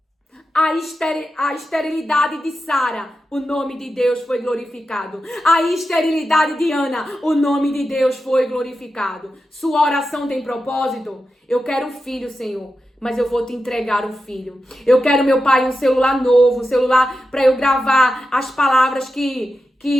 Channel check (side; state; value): both; normal; correlation 0.90